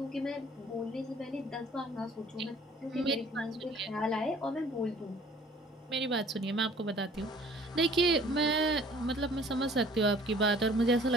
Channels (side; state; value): both; normal; correlation 0.54